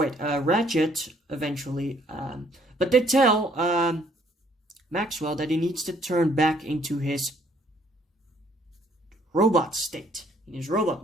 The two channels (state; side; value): normal; both; correlation 0.64